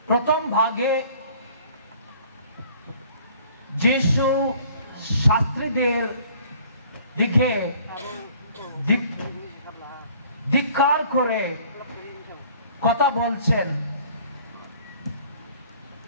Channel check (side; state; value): both; inverted; correlation -0.54